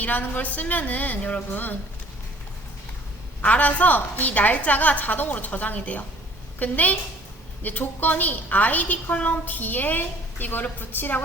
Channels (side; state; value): both; normal; correlation 0.54